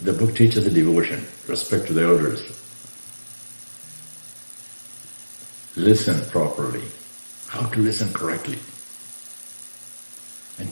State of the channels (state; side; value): inverted; both; correlation -1.00